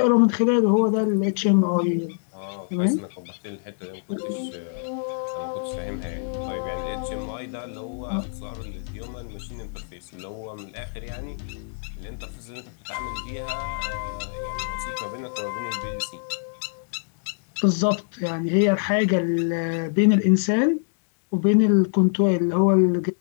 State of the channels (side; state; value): right; silent; digital silence